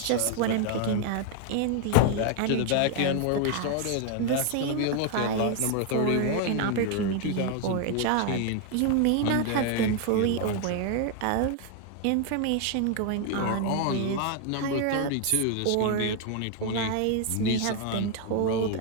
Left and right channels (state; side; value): different; both; correlation 0.00